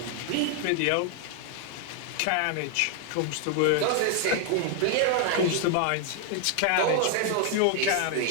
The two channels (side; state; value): both; different; correlation 0.00